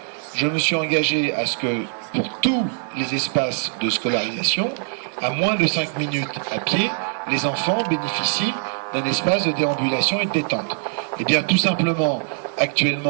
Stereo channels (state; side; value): silent; left; 62 dB below the other